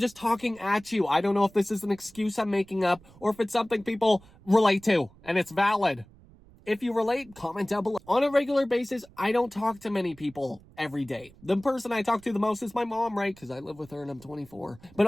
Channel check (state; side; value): noise; right; rumble, 25 dB below the sound